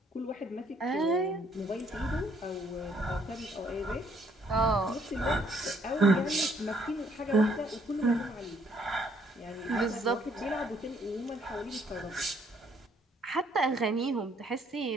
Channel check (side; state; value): both; normal; correlation 0.66